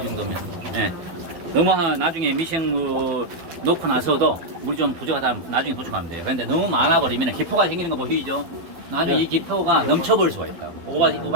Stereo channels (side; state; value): left; late; 12 ms